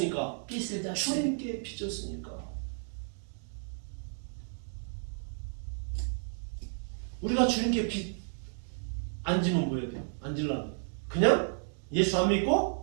빚을 졌어요. 주님께 빚졌으니까. 우리가 주님께 빚 안 지면 뭐 해야 돼요? 안 질라면 그냥 예수 안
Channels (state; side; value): silent; left; digital silence